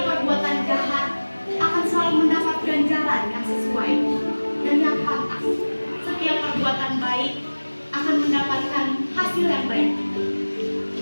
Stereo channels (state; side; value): inverted; both; correlation -1.00